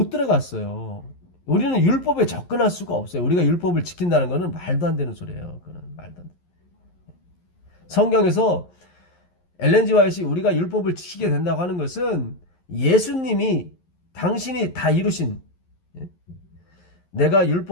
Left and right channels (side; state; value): right; late; 11 ms